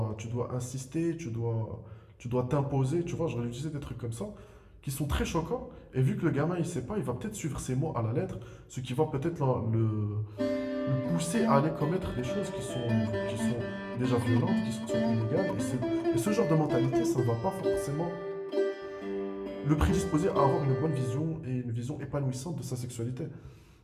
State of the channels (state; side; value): identical; both; correlation 1.00